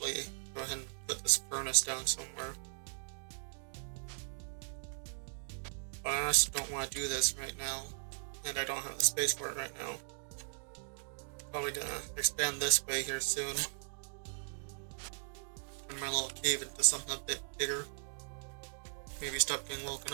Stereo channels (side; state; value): left; silent; digital silence